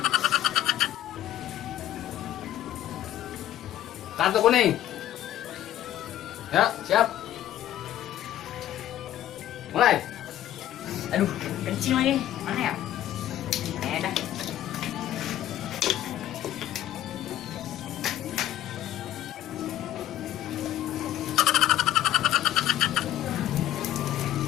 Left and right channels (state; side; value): quieter; right; 12.7 dB